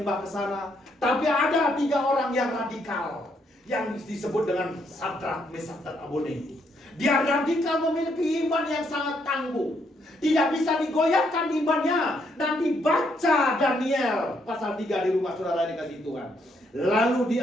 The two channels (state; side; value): normal; both; correlation 0.74